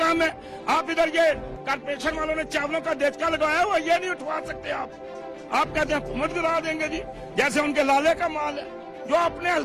है। आप इधर ये कारपोरेशन वालों ने चावलों का देचका लगाया हुआ, ये नहीं उठवा सकते आप कहते हैं हुकूमत गिरा देंगे जी, जैसे उनके लाले का माल है जो अपने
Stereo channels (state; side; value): identical; both; correlation 1.00